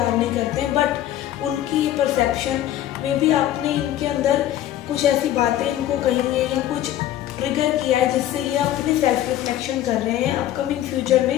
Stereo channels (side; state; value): right; quieter; 12.7 dB